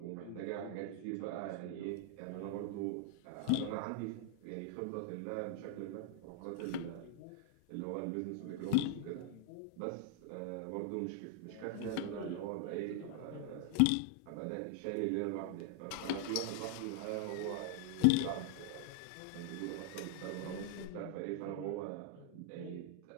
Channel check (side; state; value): both; different; correlation 0.00